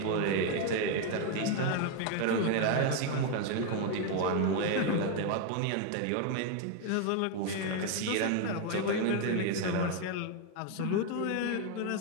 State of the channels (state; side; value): different; both; correlation 0.01